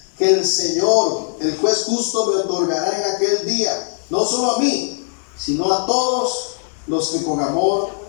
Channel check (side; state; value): right; silent; 64 dB below the other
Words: que el Señor, el juez justo, me otorgará en aquel día, no solo a mí, sino a todos los que con amor